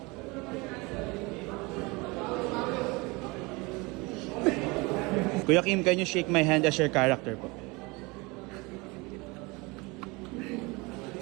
Kuya Kim, can you shake my hand as your character po?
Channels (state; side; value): quieter; left; 25.5 dB